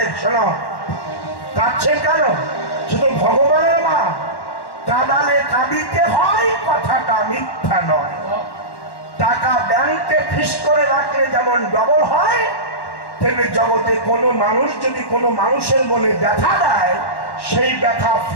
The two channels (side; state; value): right; late; 1.1 ms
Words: শোনো, কাঁদছেন কেন? শুধু ভগবানের মা, কাঁদালে কাঁদিতে হয়, কথাটা মিথ্যা নয়। টাকা ব্যাংকে ফিস করে রাখলে যেমন ডবল হয়, তেমনি জগতে কোনো মানুষ যদি কোনো মানুষের মনে ব্যথা দেয়, সেই ব্যথা